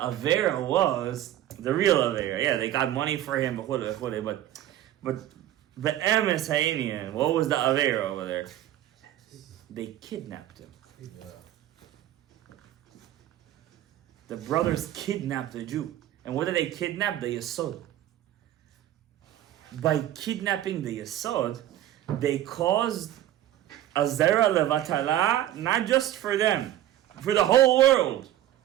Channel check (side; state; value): left; quieter; 12.9 dB